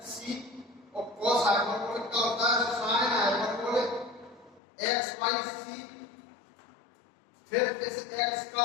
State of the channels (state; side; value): drops out; right; at 4.6 s